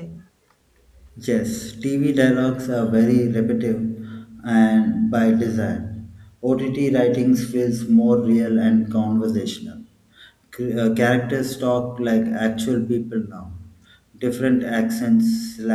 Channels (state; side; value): identical; both; correlation 1.00